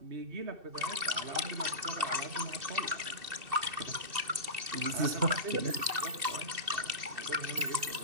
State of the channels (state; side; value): late; left; 2.7 ms